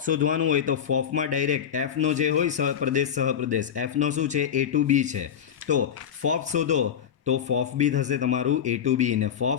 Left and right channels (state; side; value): quieter; right; 8.6 dB